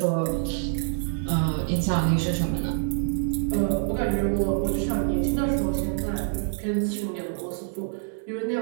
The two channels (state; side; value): silent; left; 61 dB below the other